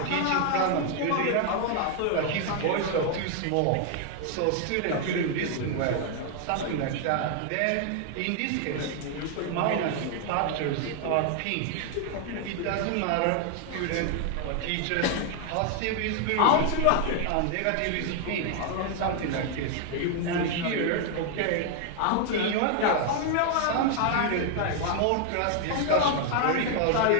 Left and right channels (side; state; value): both; different; correlation 0.00